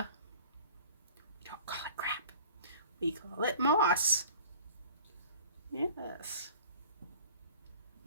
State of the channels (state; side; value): inverted; both; correlation -0.46